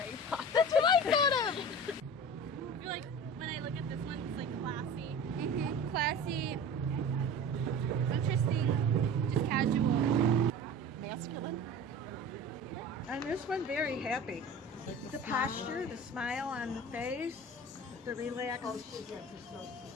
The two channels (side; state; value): both; normal; correlation 0.36